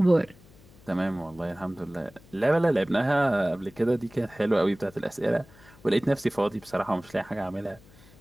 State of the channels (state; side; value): noise; left; hum, 25 dB below the sound